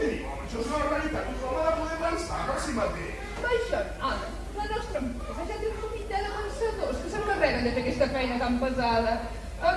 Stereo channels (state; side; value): identical; both; correlation 1.00